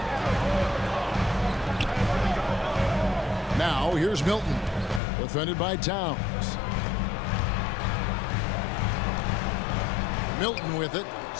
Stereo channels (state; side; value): drops out; right; at 5.0 s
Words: Now, here's Milton, defended by Towns. Milton with it,